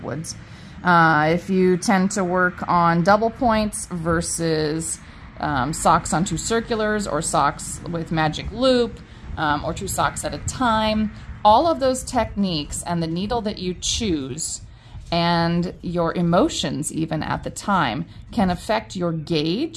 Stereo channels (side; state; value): both; identical; correlation 1.00